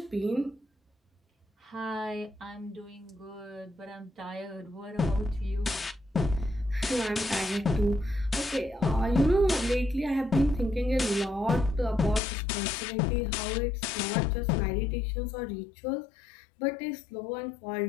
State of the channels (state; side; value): drops out; right; at 12.2 s